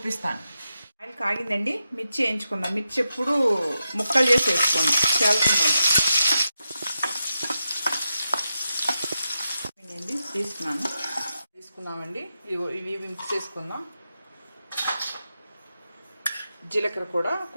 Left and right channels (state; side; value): inverted; both; correlation -0.89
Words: ఆయిల్ కాగిందండి. మిర్చి వేయించుకుందాం. మిర్చి ఎప్పుడు ముక్కలు చేసి వేసుకోండి. చేయాల్సిందండి తీసుకున్నామండి. ఇవి మిక్స్ చేసుకుందాం. జీలకర్ర కూడా